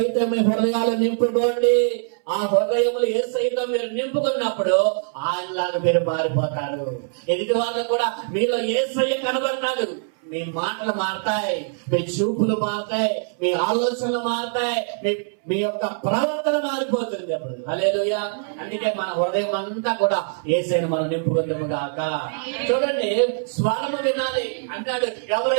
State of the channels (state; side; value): silent; left; 63 dB below the other